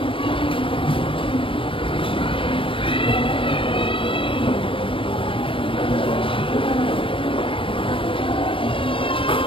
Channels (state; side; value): late; right; 0.25 ms